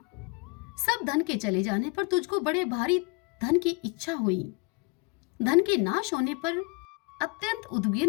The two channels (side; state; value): right; quieter; 29.9 dB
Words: सब धन के चले जाने पर तुझको बड़े भारी धन की इच्छा हुई। धन के नाश होने पर, अत्यंत